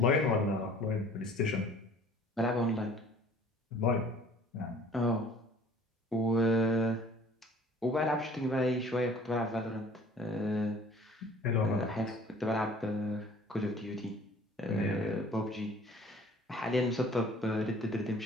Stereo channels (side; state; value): both; normal; correlation 0.51